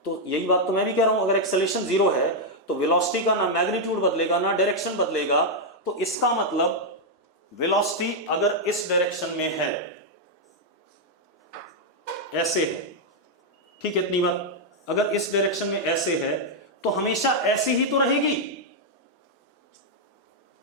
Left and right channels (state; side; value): normal; both; correlation -0.02